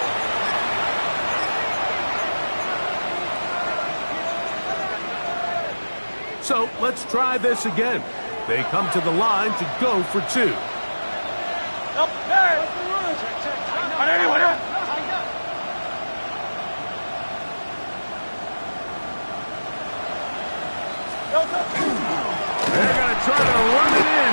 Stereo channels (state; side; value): inverted; both; correlation -1.00